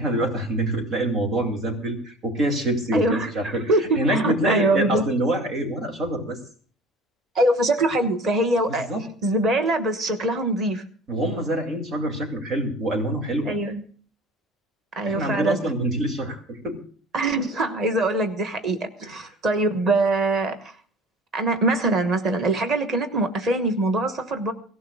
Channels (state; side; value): normal; both; correlation 0.42